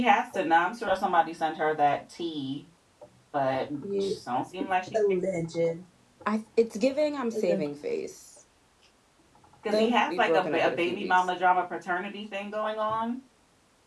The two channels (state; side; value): identical; both; correlation 1.00